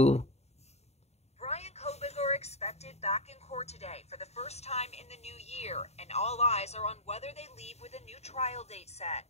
Bryan Kohberger expected back in court today for the first time in the new year, and all eyes are on whether they leave with a new trial date set.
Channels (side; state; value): right; late; 0.31 ms